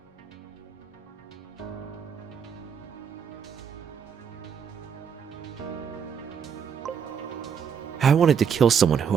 I wanted to kill someone who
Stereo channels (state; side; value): quieter; left; 7.3 dB